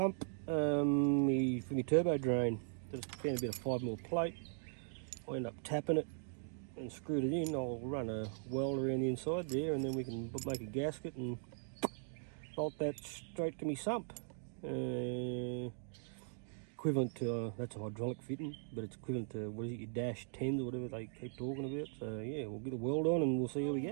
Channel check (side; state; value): left; silent; digital silence